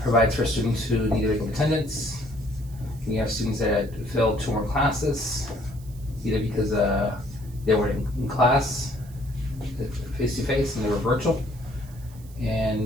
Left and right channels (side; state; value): right; noise; hiss, 24 dB below the sound